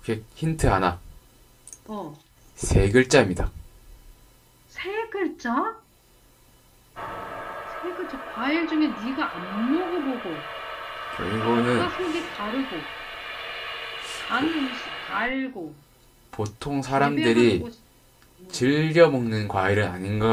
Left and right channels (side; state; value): both; identical; correlation 1.00